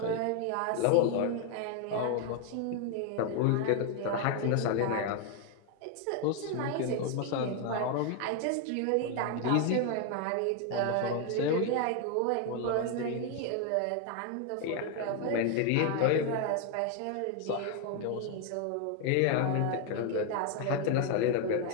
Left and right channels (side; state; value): both; different; correlation 0.01